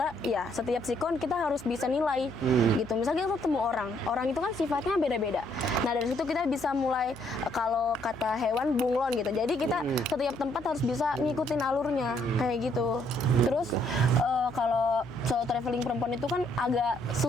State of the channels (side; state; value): left; noise; hum, 22 dB below the sound